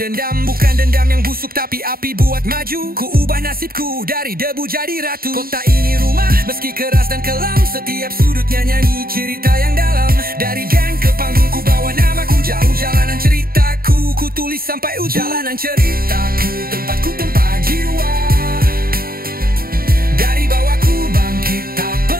Bukan dendam yang busuk tapi api buat maju. Ku ubah nasibku dari debu jadi ratu. Kota ini rumah meski keras dan kelam. Setiap sudutnya nyanyi cerita yang dalam. Dari gang ke panggung ku bawa namaku. Jauh jalanan ceritaku, ku tulis sampai ujung. Jalanan ceritaku, tempatku tempat jiwa. Dari bawah ku bangkit, tak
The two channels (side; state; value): left; late; 0.43 ms